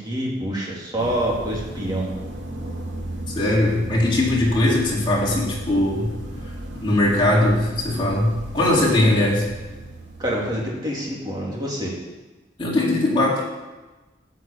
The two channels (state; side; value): normal; both; correlation 0.62